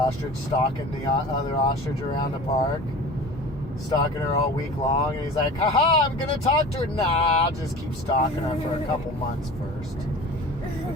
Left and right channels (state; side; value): normal; both; correlation 0.38